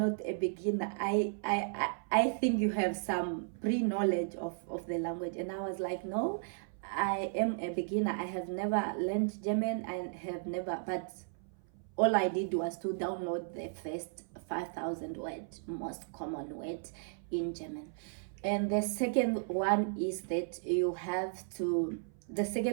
a beginner. I think you have some pre-knowledge of the language. And I was like, no, I am a beginner. I have never learned German. But all I did was to download the first 5,000 words, most common words in German. And the second one is that the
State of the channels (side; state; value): left; silent; 55 dB below the other